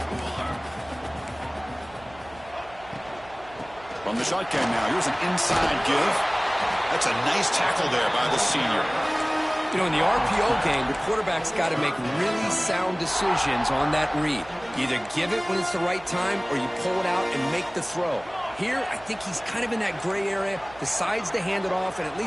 From the shotgun now, here's an inside give. That's a nice tackle there by the senior. You know, in the RPO game, the quarterback's got to make really sound decisions on that read. You either give it when it's the right time or you pull it out and make the throw. Here, I think he's kind of in that gray area, decides to hand it off and at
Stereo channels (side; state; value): right; noise; hum, 22 dB below the sound